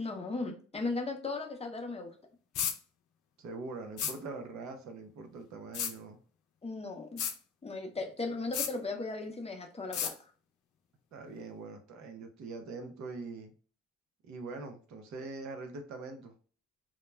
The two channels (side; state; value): right; quieter; 3.0 dB